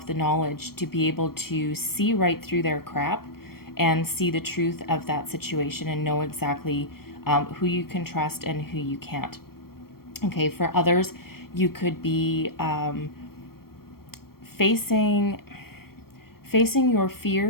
the knowledge to be able to see right through their crap and see the truth of that situation and know exactly who you can trust and who you can't. Okay, for others, you could be facing your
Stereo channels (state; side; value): late; right; 0.94 ms